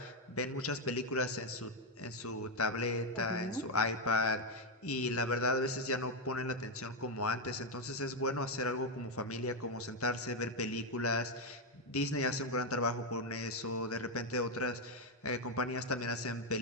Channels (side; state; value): both; normal; correlation 0.03